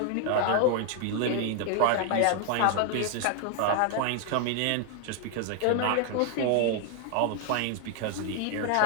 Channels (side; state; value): both; different; correlation 0.00